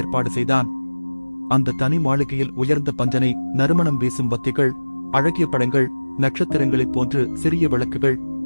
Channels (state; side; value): inverted; both; correlation -1.00